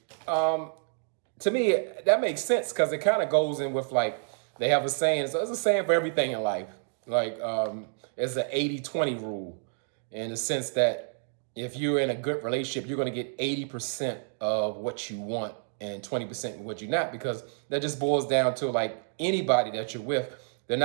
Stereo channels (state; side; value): silent; left; digital silence